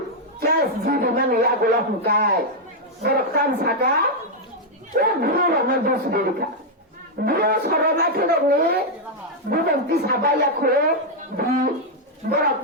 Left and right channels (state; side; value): normal; both; correlation -0.02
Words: kes jadi mana ya golak mukai berkan saka guru ramai dos berika guru sorona kena ni bukan tisabaya kore di